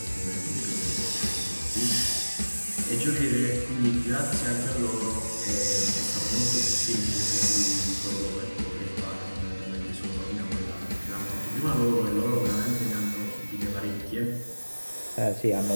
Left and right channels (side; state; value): both; inverted; correlation -1.00